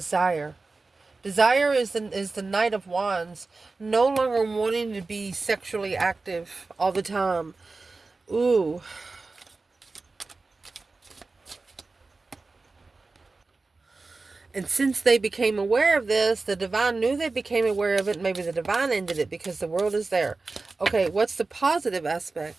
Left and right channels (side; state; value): left; quieter; 3.7 dB